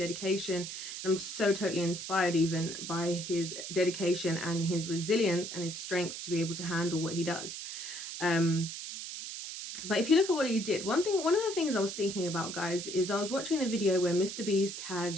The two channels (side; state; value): right; noise; hiss, 8 dB below the sound